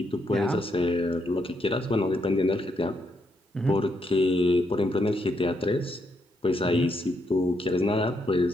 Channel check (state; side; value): normal; both; correlation 0.78